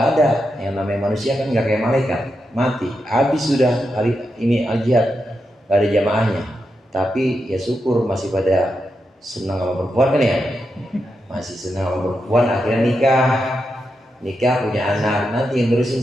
ada, yang namanya manusia kan nggak kayak malaikat, mati, habis sudah hari ini al-jihad, nggak ada jamaahnya. Tapi ya syukur masih pada senang sama perempuan kan ya, masih senang sama perempuan. Akhirnya nikah punya anak. Nanti yang nerusin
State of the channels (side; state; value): both; normal; correlation 0.86